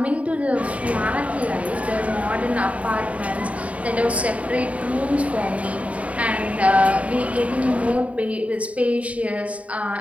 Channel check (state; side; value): late; left; 0.067 ms